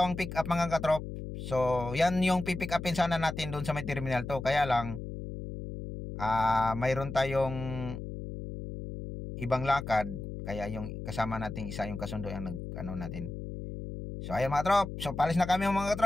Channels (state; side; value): noise; left; hum, 8 dB below the sound